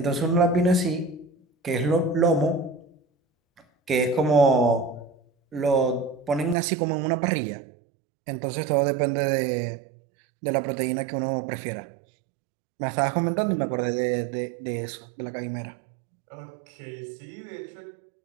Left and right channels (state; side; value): drops out; left; at 6.6 s